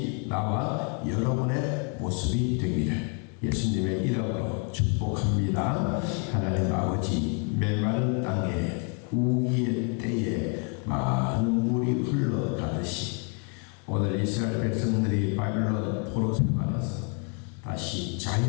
나와 여러분의 모습이 되기를 예수님의 이름으로 축복합니다. 하나님 아버지, 메마른 땅에 우기의 때에 많은 물이 흘러가듯이 오늘 이스라엘 백성들이 바빌론 포로 생활에서 다시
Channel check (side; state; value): right; quieter; 39.2 dB